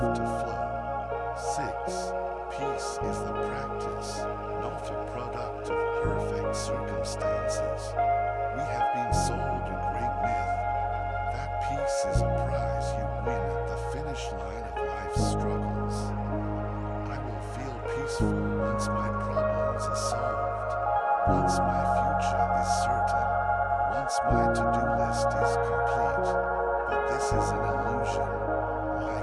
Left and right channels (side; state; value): both; identical; correlation 1.00